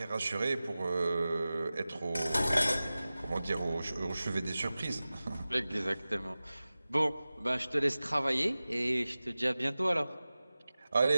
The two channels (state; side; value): inverted; both; correlation -0.96